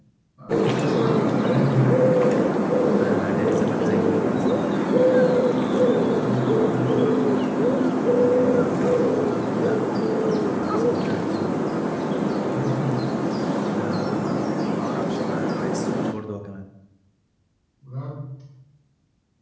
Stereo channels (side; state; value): both; identical; correlation 1.00